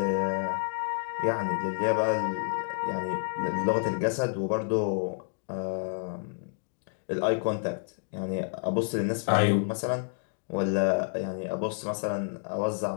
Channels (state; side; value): silent; right; digital silence